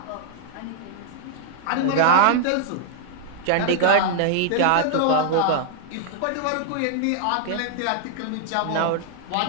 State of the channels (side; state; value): both; different; correlation 0.00